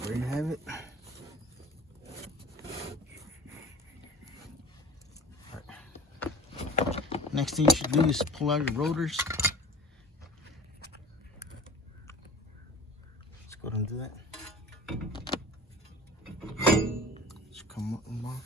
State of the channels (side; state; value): both; normal; correlation 0.42